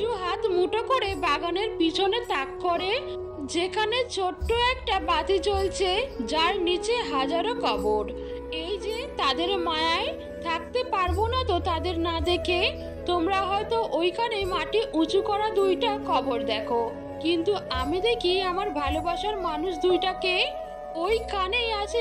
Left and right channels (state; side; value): identical; both; correlation 1.00